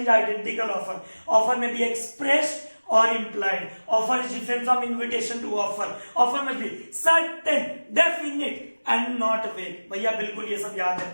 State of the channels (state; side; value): inverted; both; correlation -1.00